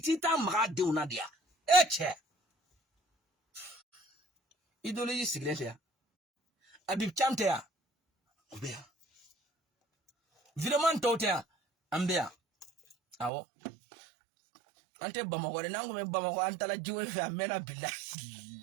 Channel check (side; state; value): left; drops out; at 13.3 s